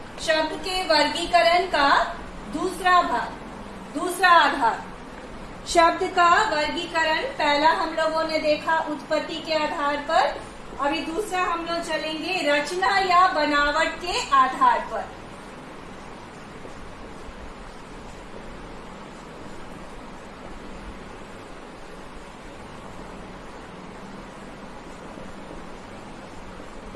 शब्द के वर्गीकरण का दूसरा आधार। शब्द का वर्गीकरण पहला हम लोगों ने देखा उत्पत्ति के आधार पर, अभी दूसरा हम लोग चलेंगे रचना या बनावट के आधार पर।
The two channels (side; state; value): both; identical; correlation 1.00